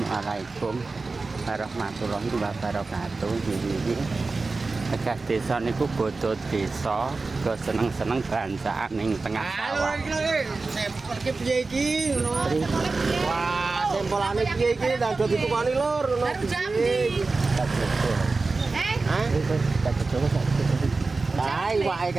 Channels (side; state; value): left; quieter; 3.8 dB